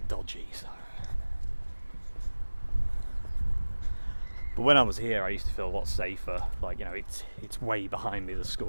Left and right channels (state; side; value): inverted; both; correlation -1.00